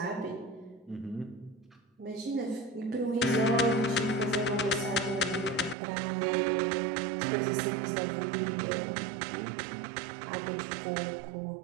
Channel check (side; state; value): left; drops out; at 5.8 s